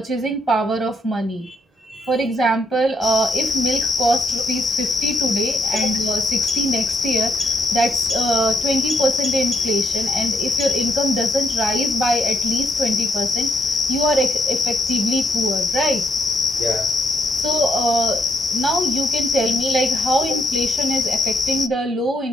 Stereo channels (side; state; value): both; normal; correlation 0.76